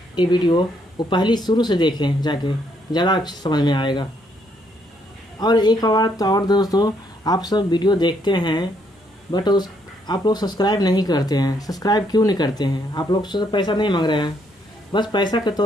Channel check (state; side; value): normal; both; correlation 0.72